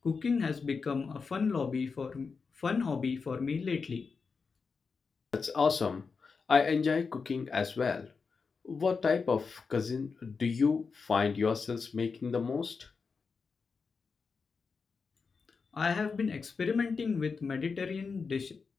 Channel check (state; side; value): quieter; right; 5.0 dB